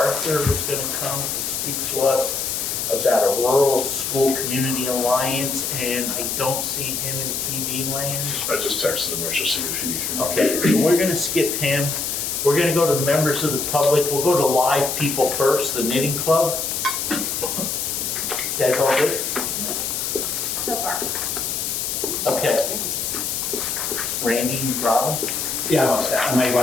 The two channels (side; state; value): left; noise; hiss, 2 dB below the sound